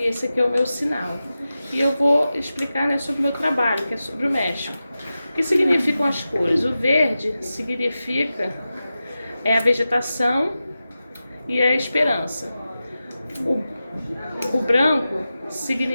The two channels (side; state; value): both; inverted; correlation -0.93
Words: esse aqui é o meu sinal. E eu vou explicar, né, sobre o meu trabalho, que é sobre o México. O que significam as cores? O verde significa a vegetação e a esperança. O branco